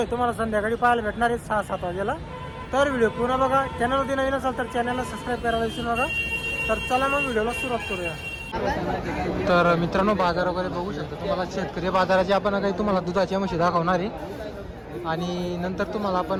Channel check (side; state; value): both; identical; correlation 1.00